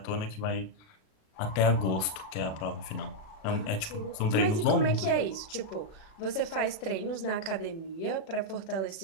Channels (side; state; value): right; late; 37 ms